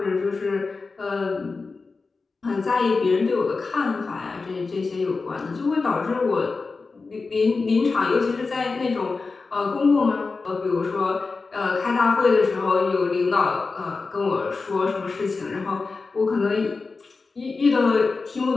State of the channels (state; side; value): quieter; right; 4.2 dB